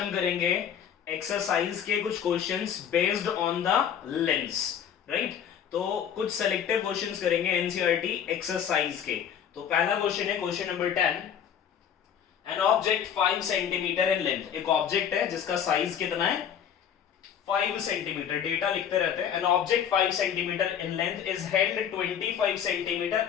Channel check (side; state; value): right; quieter; 8.6 dB